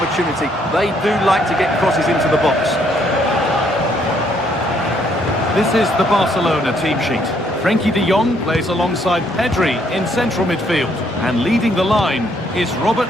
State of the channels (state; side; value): normal; both; correlation 0.69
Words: They do like to get crosses into the box. This is the Barcelona team sheet. Frenkie de Jong plays alongside Pedri in central midfield, and leading the line is Robert